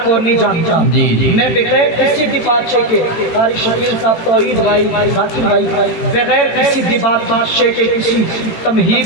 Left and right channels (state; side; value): late; right; 18 ms